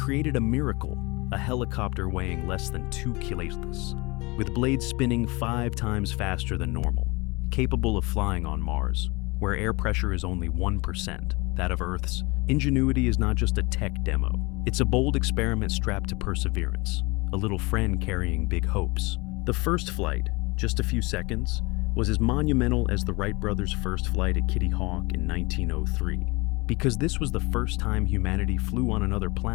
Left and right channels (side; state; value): right; quieter; 25.4 dB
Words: a miracle, a helicopter weighing less than 2 kilos, with blades spinning 5 times faster than normal, capable of flying on Mars, where air pressure is only 1%, that of Earth's. Ingenuity is not just a tech demo. It's a bold experiment strapped to perseverance, a little friend carrying big hopes. The first flight, just a few seconds, was as monumental as the Wright brothers' first flight at Kitty Hawk in 1903, because this was the first time humanity flew on another